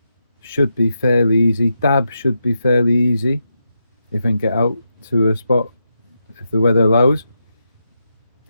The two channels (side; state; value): both; inverted; correlation -0.85